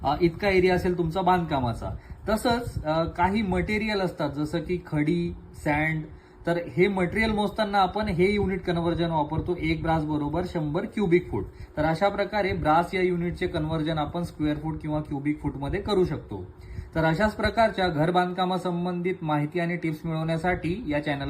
इतका एरिया असेल तुमचा बांधकामाचा. तसंच काही मटेरियल असतात जसं की खडी, सँड. तर हे मटेरियल मोजताना आपण हे युनिट कन्व्हर्जन वापरतो एक ब्रास बरोबर 100 क्युबिक फूट. तर अशा प्रकारे ब्रास या युनिटचे कन्व्हर्जन आपण स्क्वेअर फूट किंवा क्युबिक फूट मध्ये करू शकतो. तर अशाच प्रकारच्या घर बांधकामासंबंधित माहिती आणि टिप्स मिळवण्यासाठी या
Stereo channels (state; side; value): identical; both; correlation 1.00